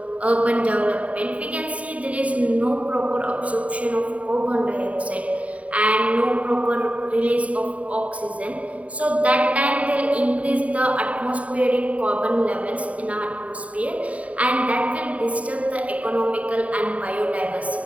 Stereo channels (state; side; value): late; left; 0.067 ms